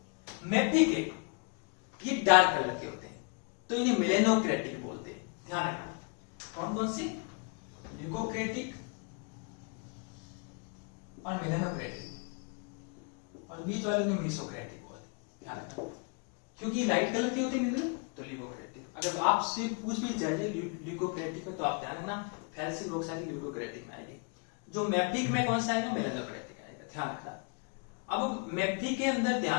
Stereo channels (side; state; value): right; quieter; 36.3 dB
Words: मैफिक है ये डार्क कलर के होते हैं, तो इन्हें मेलेनोक्रेटिक बोलते हैं, ध्यान रखना। कौन कौन से, ल्यूकोक्रेटिक और मेलेनोक्रेटिक, और बीच वाले ने मीसोक्रेटिक बोलते हैं, ध्यान रखना। क्योंकि लाइट कलर के होते हैं मिनरल, तो ल्यूकोक्रेटिक। अगर आपसे पूछ भी जाए ल्यूकोक्रेटिक में, तो आप ध्यान रखना फेल्सिक ऑक्साइड ल्यूकोक्रेटिक में आएगी। जो मैफिक में कौन सा आएगा, मेलेनोक्रेटिक आएगा, ध्यान रखना। अब मैफिक के अंदर